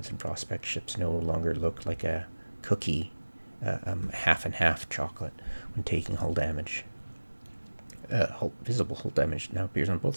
and Prospect ships no longer look like a cookie, half and half chocolate when taking hull damage. Visible hull damage now appears on both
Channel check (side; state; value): both; inverted; correlation -1.00